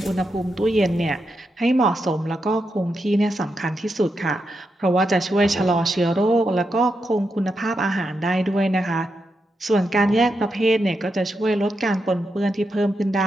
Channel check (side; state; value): both; normal; correlation 0.85